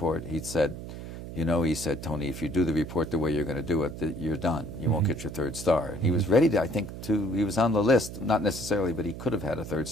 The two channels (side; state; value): right; noise; hum, 10 dB below the sound